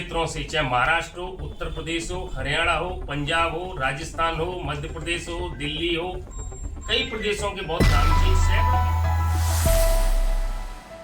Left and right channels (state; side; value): identical; both; correlation 1.00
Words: से, चाहे महाराष्ट्र हो, उत्तर प्रदेश हो, हरियाणा हो, पंजाब हो, राजस्थान हो, मध्य प्रदेश हो, दिल्ली हो, कई प्रदेशों के बहुत नाम